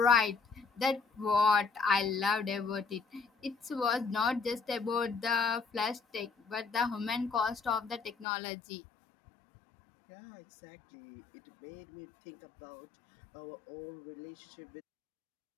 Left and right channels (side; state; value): right; drops out; at 8.2 s